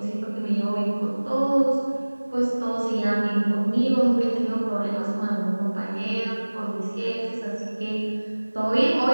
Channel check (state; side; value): inverted; both; correlation -1.00